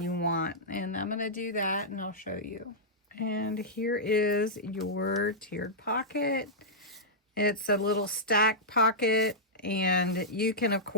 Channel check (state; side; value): normal; both; correlation -0.11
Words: want. And I'm going to do that and I'll show you. And here is your tiered pocket. It's a little stack pocket. And you can, of